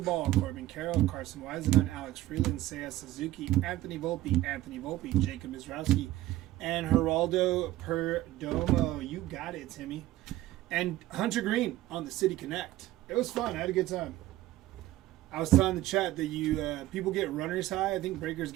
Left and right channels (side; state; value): left; quieter; 15.6 dB